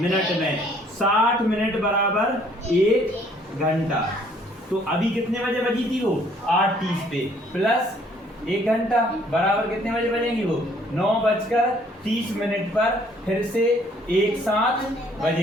में। 60 मिनट बराबर 1 घंटा। तो अभी कितने बजे बजी थी वो? 8:30 पे प्लस 1 घंटा बराबर कितने बजे बजेंगी वो? 9:30 पर फिर से एक साथ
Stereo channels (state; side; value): normal; both; correlation 0.61